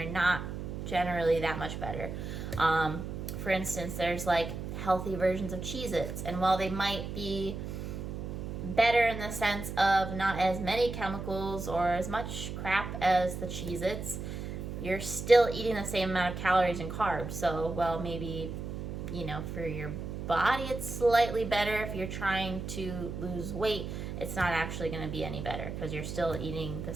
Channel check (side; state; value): right; noise; hum, 6 dB below the sound